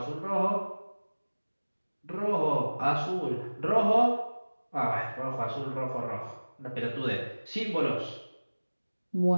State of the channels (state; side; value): inverted; both; correlation -1.00